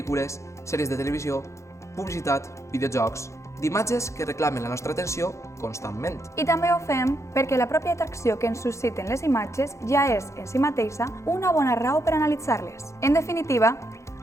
sèries de televisió, publicitat, videojocs, d'imatges que reclamen la nostra atenció constantment. I també ho fem perquè la pròpia atracció que ens susciten les imatges ja és, en si mateixa, una bona raó per analitzar-les. En definitiva,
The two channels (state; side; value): late; right; 0.14 ms